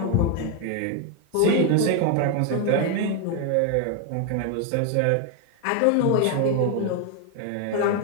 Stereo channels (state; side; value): different; both; correlation 0.01